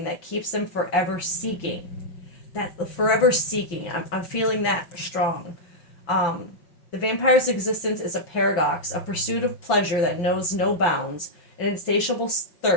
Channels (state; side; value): late; right; 6.0 ms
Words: that keeps them forever seeking. That forever seeking, I'm feeling that strong. The vampire's existence is a paradox, a pursuit of pleasure that knows no bounds, an insatiable